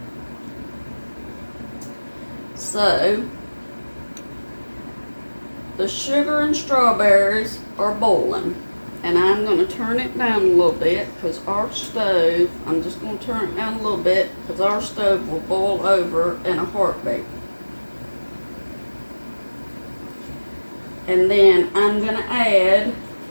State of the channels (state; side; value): inverted; both; correlation -1.00